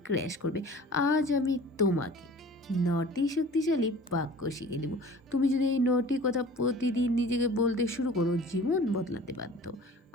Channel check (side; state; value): both; normal; correlation 0.44